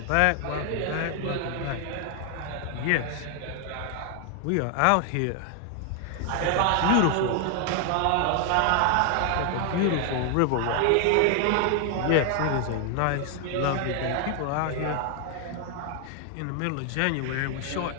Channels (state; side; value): different; both; correlation 0.00